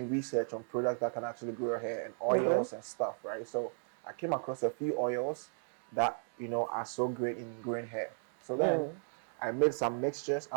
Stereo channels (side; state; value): left; silent; 54 dB below the other